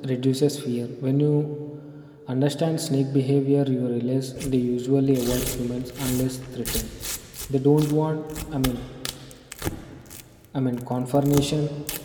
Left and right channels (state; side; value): identical; both; correlation 1.00